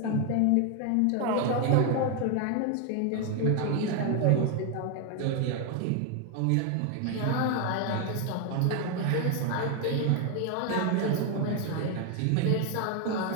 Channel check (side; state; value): both; different; correlation 0.01